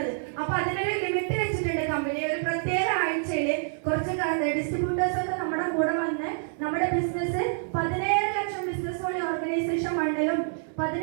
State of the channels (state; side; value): silent; left; 60 dB below the other